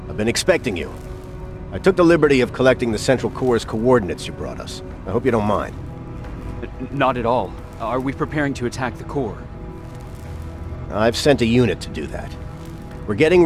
I've been expecting you. I took the liberty of collecting the Central Core's coordinates you brought us. I hope you don't mind. Not at all. Are we preparing to attack the core? I've sent a unit to do that. We're getting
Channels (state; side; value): identical; both; correlation 1.00